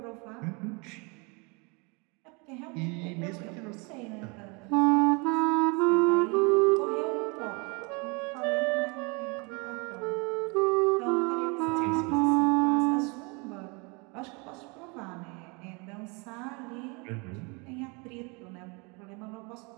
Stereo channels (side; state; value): left; quieter; 30.3 dB